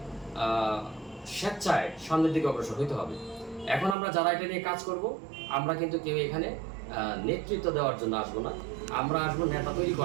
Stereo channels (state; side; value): drops out; left; at 4.0 s